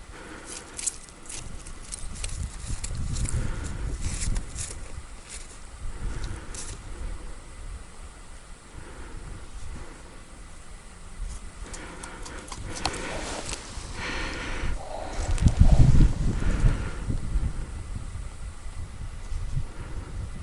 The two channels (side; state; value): both; identical; correlation 1.00